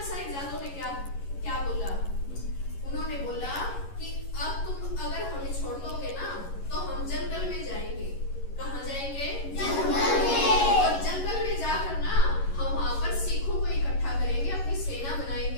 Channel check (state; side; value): late; right; 11 ms